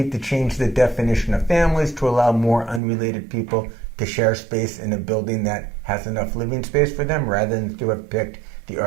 to change the definition of families to allow more unrelated people to share space in a building that has enough living space for them, rather than to have picked the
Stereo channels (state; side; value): drops out; left; at 2.8 s